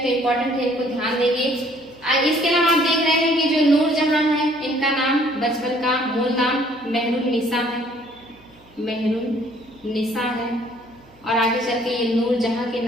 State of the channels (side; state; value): right; noise; hum, 29 dB below the sound